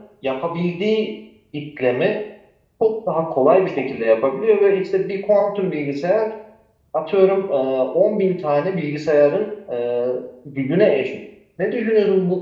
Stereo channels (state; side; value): identical; both; correlation 1.00